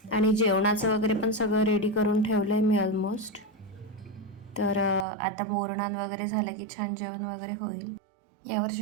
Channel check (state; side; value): drops out; left; at 5.1 s